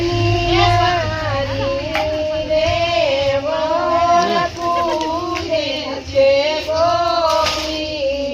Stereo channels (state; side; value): identical; both; correlation 1.00